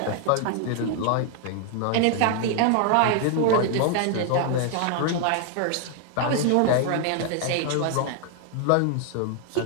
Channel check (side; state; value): both; different; correlation 0.00